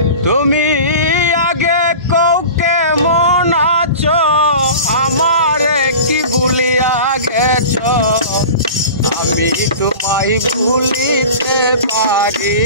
তুমি আগে কৌকে মন আছো আমার কি ভুলিয়া গেছ, আমি তোমায় ভুলিতে পারি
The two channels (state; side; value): inverted; both; correlation -0.36